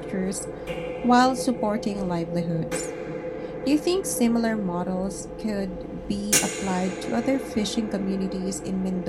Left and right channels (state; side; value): identical; both; correlation 1.00